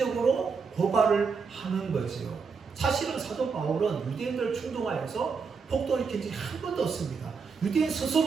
고발을 하는 거지요. 사실은 사도 바울은 유대인들을 충동하여서 폭동을 일으킨 적이 한 번도 없습니다. 유대인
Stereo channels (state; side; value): quieter; left; 5.3 dB